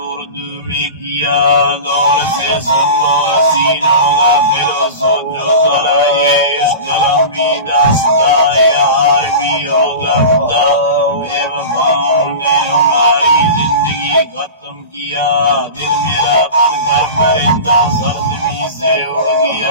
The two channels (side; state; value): both; inverted; correlation -0.31